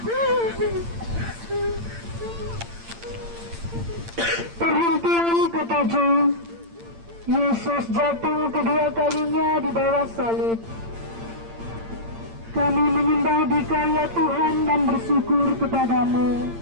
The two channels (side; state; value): left; late; 8.8 ms